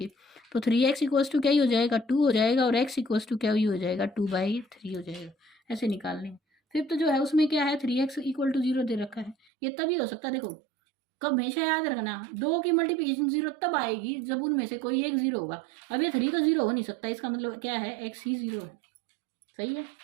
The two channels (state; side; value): drops out; left; at 9.3 s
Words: तो 3x इक्वल्स टू क्या ही हो जाएगा, 2 हो जाएगा। और x इक्वल्स टू क्या ही हो जाएगा, 2/3 हो जाएगा। ऐसे निकालने। फिफ्थ जो है उसमें क्या है, 3x इक्वल टू जीरो दे रखा है। ये तभी हो सकता है, देखो कब, हमेशा याद रखना, दो की मल्टीप्लिकेशन जीरो तब आएगी जब उनमें से कोई एक जीरो होगा। अब ये 3 तो जीरो हो नहीं सकता, इसका मतलब क्या है, x ही जीरो है। सही है,